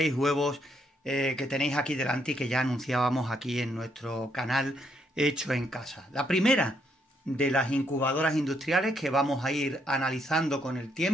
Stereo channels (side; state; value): both; normal; correlation 0.74